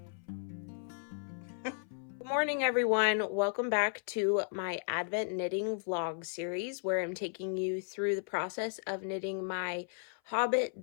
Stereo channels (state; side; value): silent; right; 55 dB below the other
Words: Good morning, everyone. Welcome back to my Advent knitting vlog series where I'm taking you through the process of knitting my Hobbit